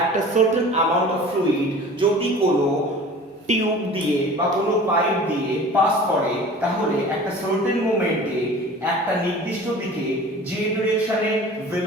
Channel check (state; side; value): normal; both; correlation 0.42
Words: সার্টেন অ্যামাউন্ট অফ ফ্লুইড যদি কোনো টিউব দিয়ে বা কোনো পাইপ দিয়ে পাস করে তাহলে একটা সার্টেন মোমেন্টে একটা নির্দিষ্ট দিকে যে ডিরেকশনে